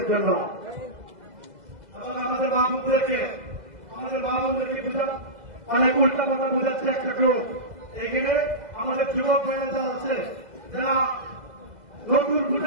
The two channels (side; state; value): left; late; 1.9 ms